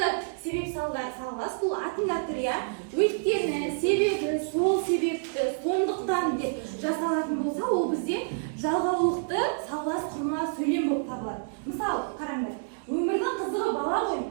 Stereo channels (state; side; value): silent; left; digital silence